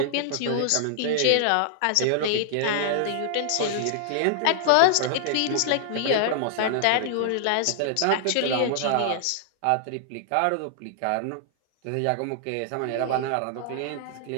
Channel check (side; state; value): both; different; correlation -0.01